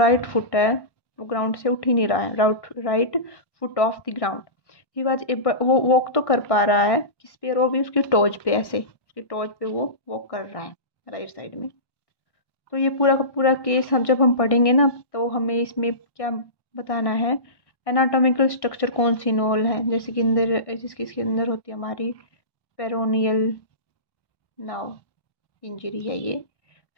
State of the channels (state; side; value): late; right; 1.1 ms